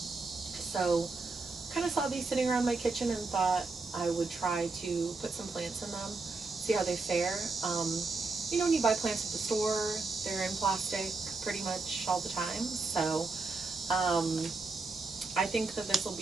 kind of saw these sitting around my kitchen and thought I would try to put some plants in them, see how they fare. When you buy plants at the store, they're in plastic pretty much all the time. So I think that this will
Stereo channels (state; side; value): quieter; left; 3.8 dB